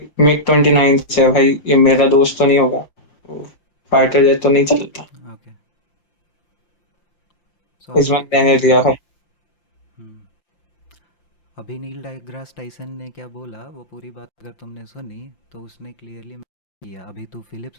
मिग 29 से है भाई. ये मेरा दोस्त तो नहीं होगा, फाइटर जेट तो नहीं चलता. ओके. इस बार मैंने लिया भाई. अभी नील डेग्रास टाइसन ने क्या बोला वो पूरी बात अगर तुमने सुनी तो उसने क्लियरली किया. अभी तू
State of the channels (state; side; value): late; right; 5.9 ms